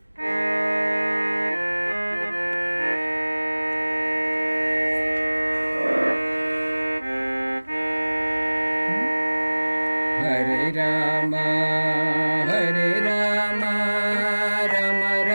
హరే రామ హరే రామ రామ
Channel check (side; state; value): both; inverted; correlation -1.00